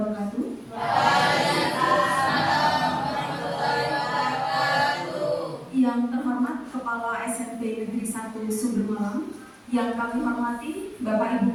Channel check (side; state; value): both; identical; correlation 1.00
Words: Yang terhormat Kepala SMP Negeri 1 Sumber Malang, yang kami hormati Bapak Ibu